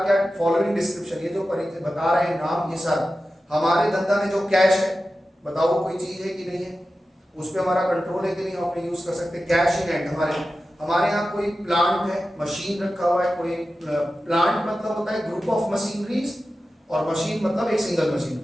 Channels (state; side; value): normal; both; correlation 0.93